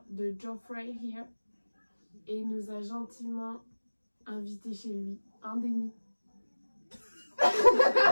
de Geoffrey, here. Et il nous a gentiment invités chez lui. Hein, Denny?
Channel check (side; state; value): both; inverted; correlation -1.00